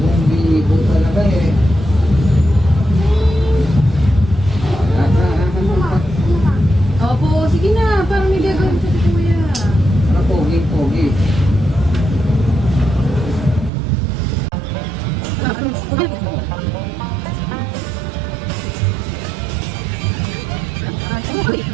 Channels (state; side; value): drops out; left; at 13.7 s